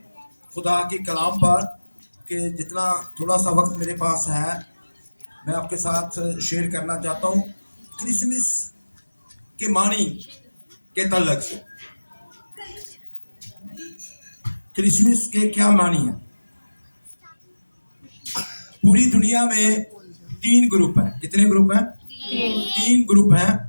खुदा के कलाम पर कि जितना थोड़ा सा वक्त मेरे पास है मैं आपके साथ शेयर करना चाहता हूँ क्रिसमस के मानी के तल्लक से। क्रिसमस के क्या मानी है? पूरी दुनिया में 3 ग्रुप हैं। कितने ग्रुप हैं? 3 ग्रुप हैं,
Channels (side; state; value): both; inverted; correlation -1.00